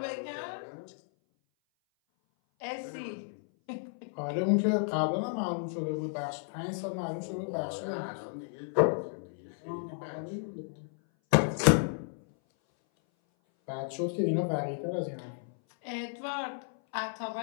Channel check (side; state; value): right; silent; 56 dB below the other